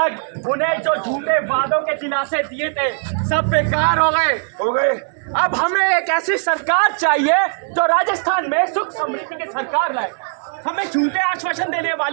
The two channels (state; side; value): silent; left; 66 dB below the other